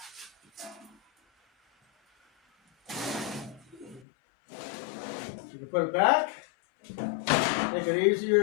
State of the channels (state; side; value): drops out; right; at 4.0 s